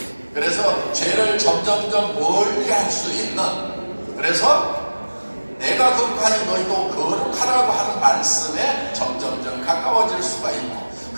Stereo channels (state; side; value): inverted; both; correlation -1.00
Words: 그래서 죄를 점점점 멀리 할 수 있는, 그래서 내가 거룩하니 너희도 거룩하라고 하는 말씀에 점점점 가까워질 수가 있고,